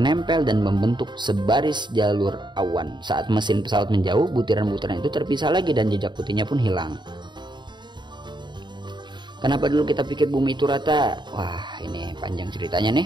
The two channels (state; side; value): late; left; 0.22 ms